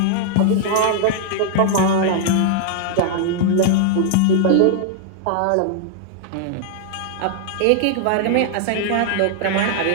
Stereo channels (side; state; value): both; different; correlation -0.01